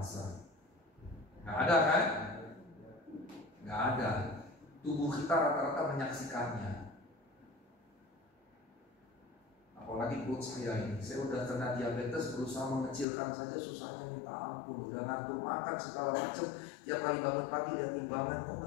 Nggak ada kan? Nggak ada. Tubuh kita rata-rata menyaksikannya. Apalagi perut saya ini. Saya udah kena diabetes, berusaha mengecilkan saja susahnya minta ampun. Udah ngatur makan segala macam. Tiap kali bangun pagi lihat timbangan, kok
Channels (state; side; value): drops out; right; at 13.1 s